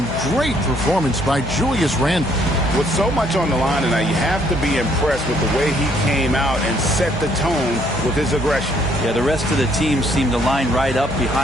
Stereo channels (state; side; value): normal; both; correlation 0.66